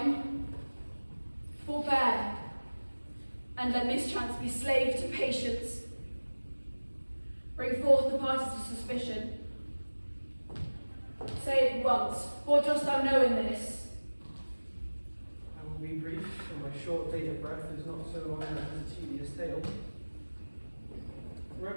forbear, and let mischance be slave to patience. Bring forth the parties of suspicion. Say it once, what dost thou know in this? I will be brief, for my short date of breath is not so long as a tedious tale.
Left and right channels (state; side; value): inverted; both; correlation -1.00